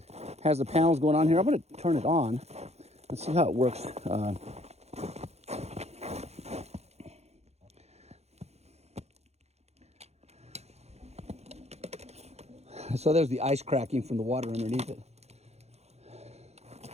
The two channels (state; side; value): late; left; 0.31 ms